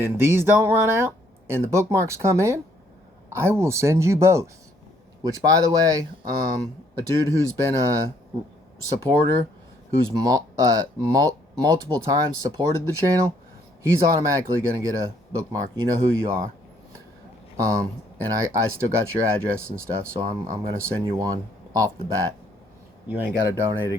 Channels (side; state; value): both; normal; correlation 0.67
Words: then these don't run out, and the bookmarks come in, I will send you both. Which, by the way, a dude who's been a supporter, who's multiple times supported the channel, he's automatically going to get a bookmark. You know who you are. And I still got your address and stuff, so I'm going to send you one off the bat. You ain't got to donate